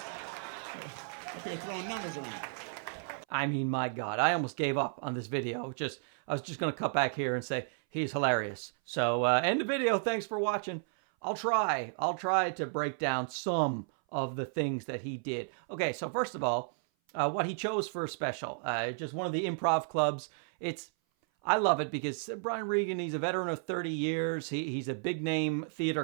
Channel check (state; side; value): silent; left; 56 dB below the other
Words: Up here throwing numbers around. I mean, my God, I almost gave up on this video. I was just going to cut back here and say, he's hilarious. So, end the video. Thanks for watching. I'll try to break down some of the things that he did. Okay, so first of all, what he chose for a special. Just one of the improv clubs. I love it because Brian Regan, he's a veteran of 30 years. He's a big name theater